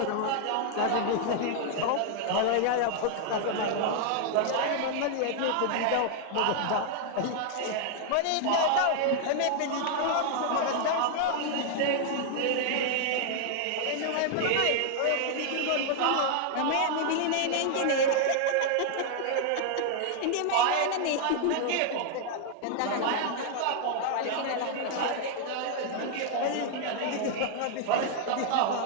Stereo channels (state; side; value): different; both; correlation 0.00